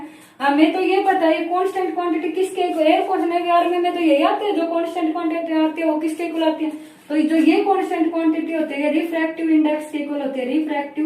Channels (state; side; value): identical; both; correlation 1.00